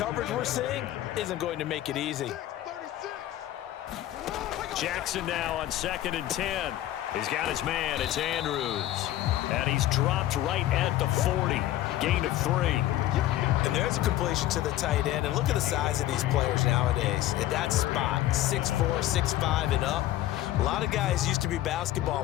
we're seeing isn't going to make it easy. Jackson now on 2nd and 10. He's got his man. It's Andrews. And he's dropped right at the 40. Gain of 3. And there's a completion to the tight end. And look at the size of these players nowadays. At that spot, 6'4", 6'5", and up. A lot of guys used to be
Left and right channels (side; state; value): right; quieter; 14.1 dB